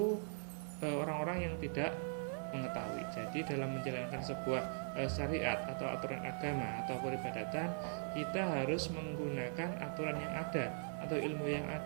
orang-orang yang tidak mengetahui. Jadi dalam menjalankan sebuah syariat atau aturan agama atau peribadatan, kita harus menggunakan aturan yang ada atau ilmu yang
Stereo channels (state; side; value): silent; left; digital silence